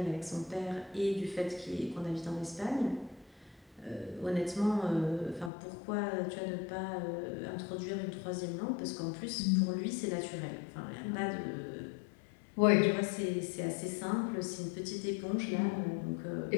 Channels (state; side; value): drops out; right; at 5.5 s